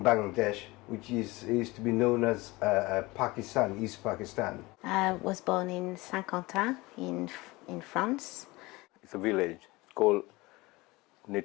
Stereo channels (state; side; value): quieter; right; 22.0 dB